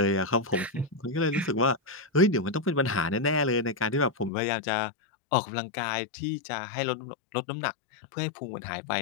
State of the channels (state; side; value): drops out; right; at 4.3 s